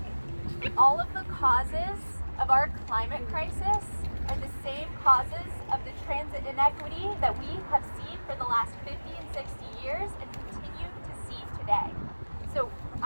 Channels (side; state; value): both; inverted; correlation -1.00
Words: all of the causes of our climate crisis are the same causes of the transit inequity that we have seen for the last 50 and 60 years and continue to see today. So